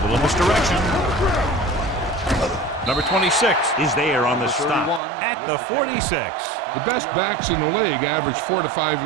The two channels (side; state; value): left; drops out; at 5.0 s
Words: little misdirection. Number 26 is there on the stop at the 46. The best backs in the league average 4 to 5